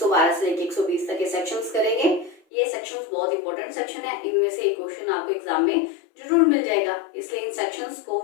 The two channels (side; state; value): right; drops out; at 2.4 s